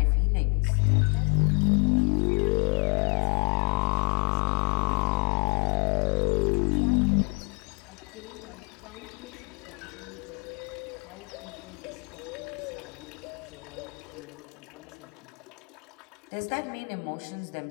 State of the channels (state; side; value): quieter; right; 35.8 dB